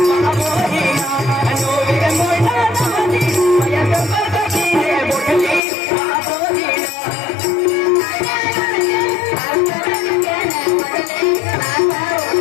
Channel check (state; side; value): drops out; right; at 5.6 s